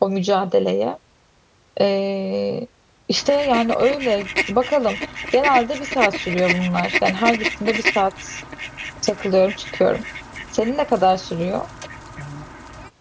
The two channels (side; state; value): both; identical; correlation 1.00